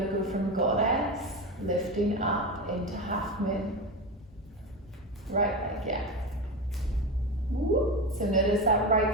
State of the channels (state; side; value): normal; both; correlation 0.20